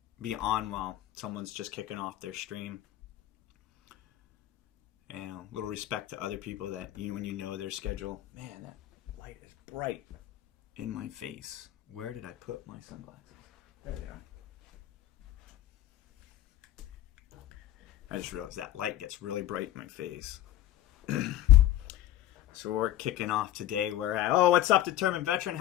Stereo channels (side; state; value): right; quieter; 13.3 dB